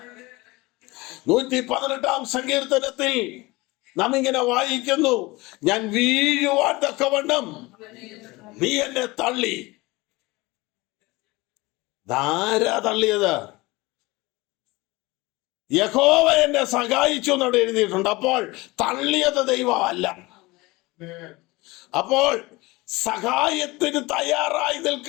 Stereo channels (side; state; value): right; quieter; 22.2 dB